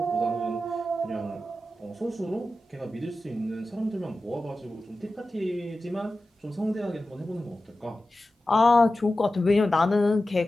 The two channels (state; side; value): normal; both; correlation 0.94